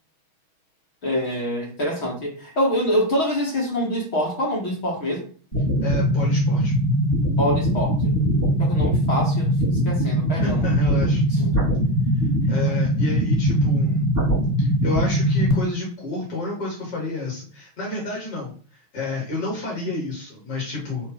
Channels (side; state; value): right; late; 6.3 ms